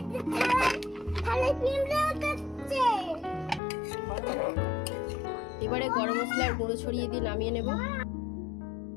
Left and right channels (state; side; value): drops out; right; at 3.6 s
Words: এবারে গরম মশলার গুঁড়ো ছড়িয়ে দিয়ে নামিয়ে নেব।